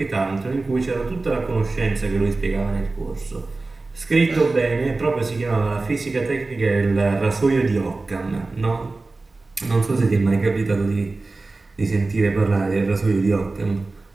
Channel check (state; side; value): quieter; left; 3.4 dB